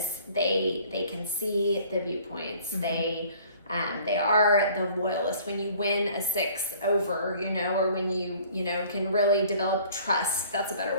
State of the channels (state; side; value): inverted; both; correlation -0.53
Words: they can see the viewpoints. Mm-hmm. They are the loyalist. When you win a 6 over, or when you can really develop trust. That's a better